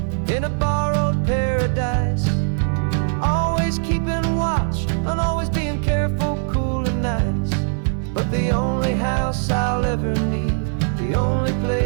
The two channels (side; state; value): left; silent; digital silence